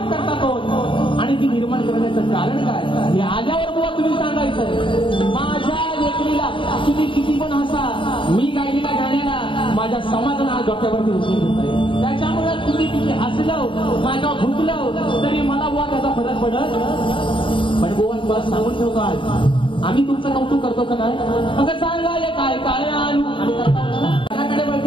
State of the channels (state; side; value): late; right; 0.25 ms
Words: करता कोण आणि ती निर्माण करण्याचं कारण काय हे आल्यावर बुवा तुम्ही सांगायचं. माझ्या लेखणीला तुम्ही किती पण हसा मी गायलेल्या गाण्याला माझ्या समाजाला आज डोक्यावरती उचलून घेताय. त्याच्यामुळे तुम्ही किती हसलं माझ्या भुकलं तरी मला बुवा त्याचा फरक पडत. पण बुवा तुला सांगून ठेवतो आज आम्ही तुमचं कौतुक करतो का नाही. अगं सांगा हे काय काय आणू आम्ही त्याकडे